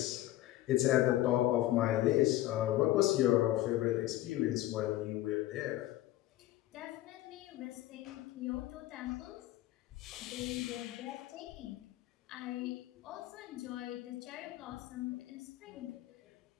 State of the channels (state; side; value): quieter; right; 15.5 dB